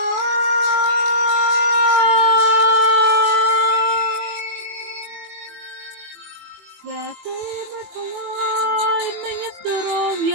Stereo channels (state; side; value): late; left; 21 ms